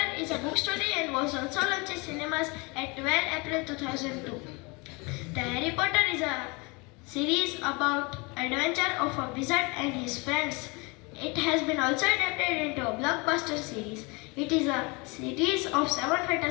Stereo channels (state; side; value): quieter; right; 28.0 dB